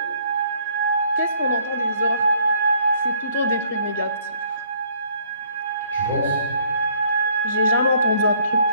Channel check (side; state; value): both; inverted; correlation -0.63